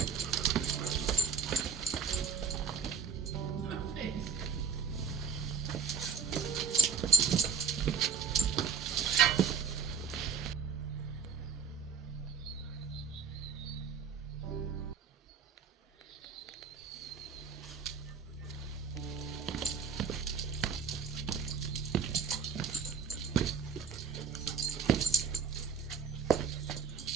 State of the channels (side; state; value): left; quieter; 5.5 dB